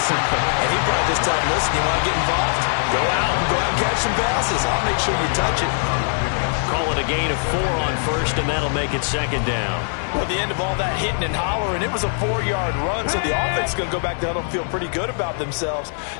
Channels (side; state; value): right; silent; 64 dB below the other